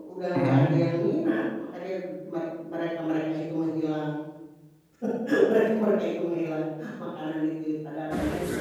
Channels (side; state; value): both; identical; correlation 1.00